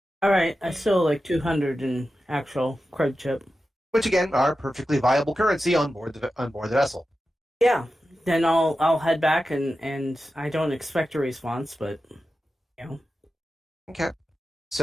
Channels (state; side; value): normal; both; correlation 0.92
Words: All right. I still like 200 in actual credit chip. Which again are perfectly viable currency on board the vessel. Yeah. Then I'll head back and I don't expect a response, but Okay.